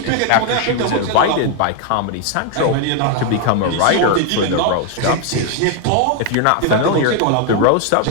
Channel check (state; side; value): different; both; correlation 0.01